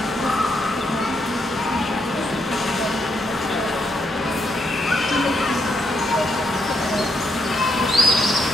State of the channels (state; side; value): normal; both; correlation 0.78